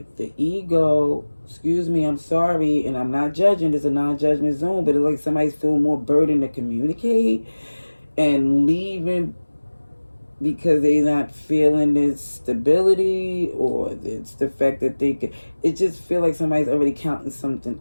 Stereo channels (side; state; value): both; inverted; correlation -1.00